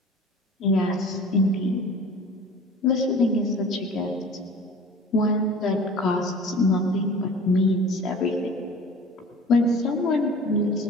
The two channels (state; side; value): normal; both; correlation 0.42